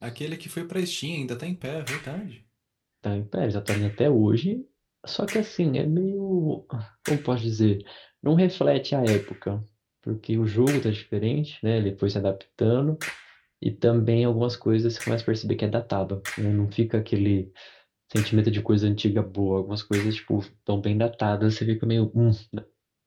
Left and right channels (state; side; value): identical; both; correlation 1.00